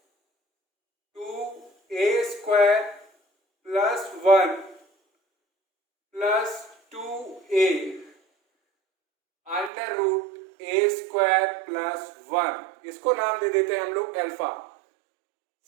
2a² plus 1 plus 2a √a² plus 1, इसको नाम दे देते हैं हम लोग अल्फा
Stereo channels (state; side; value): drops out; left; at 9.7 s